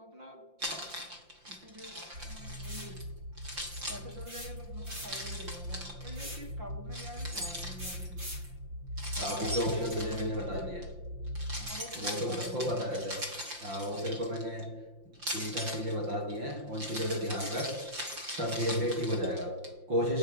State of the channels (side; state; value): left; late; 5.7 ms